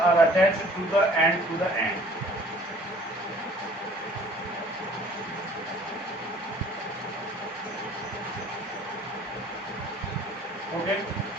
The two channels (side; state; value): both; normal; correlation 0.53